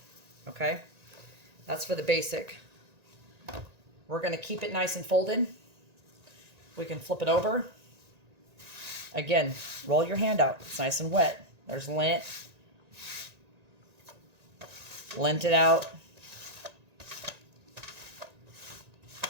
Okay? That's for the basic. We're going to keep it nice and folded. We can flip it over. Again, roll your hand out. It's nice and wet. There's lint. Lint it out.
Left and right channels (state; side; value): late; left; 1.9 ms